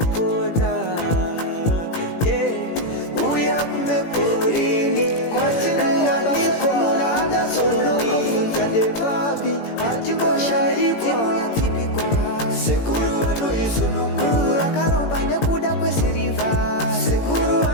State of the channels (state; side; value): late; right; 18 ms